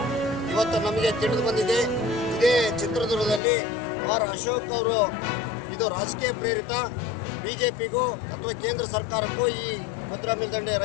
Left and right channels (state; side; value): drops out; right; at 3.4 s